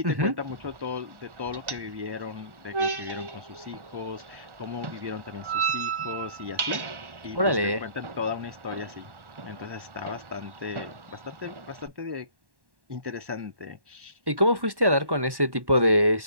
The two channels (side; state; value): left; late; 1.1 ms